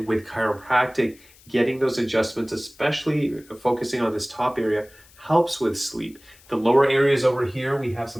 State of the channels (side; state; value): left; noise; hiss, 26 dB below the sound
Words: with chiropractic, getting those adjustments, especially focusing on this top area, helps with sleep. The lower areas over here, we have